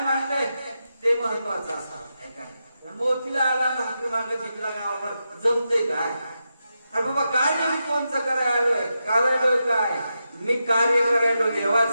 मांडलंय ते महत्वाचं असावं. मोतीला आला भाकरी मागे जिंकला गावावर जमतंय काय? अरे बाबा काय नाही, कोणचं करायलोय काय? मी कार्य करायलो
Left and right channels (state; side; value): inverted; both; correlation -0.88